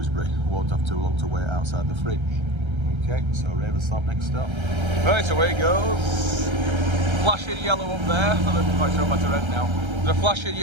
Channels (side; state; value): left; late; 1.3 ms